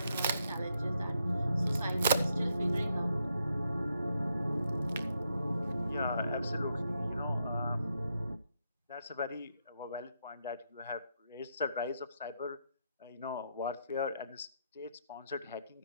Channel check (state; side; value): inverted; both; correlation -0.79